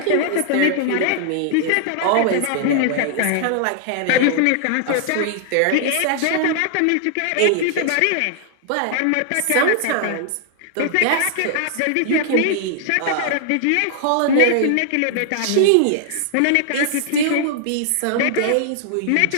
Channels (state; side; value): different; both; correlation -0.01